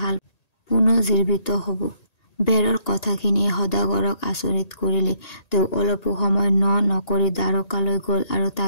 হাল পুনৰ্জীৱিত হ'ব। বেৰৰ কথাখিনিয়ে সদাগৰক আচৰিত কৰিলে। তেওঁ অলপো সময় নকৰি দ্বাৰকালৈ গ'ল আৰু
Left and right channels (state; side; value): late; right; 1.9 ms